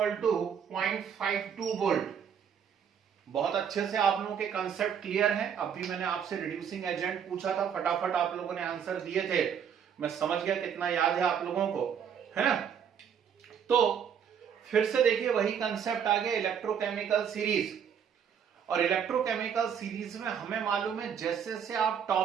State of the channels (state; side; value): quieter; left; 7.9 dB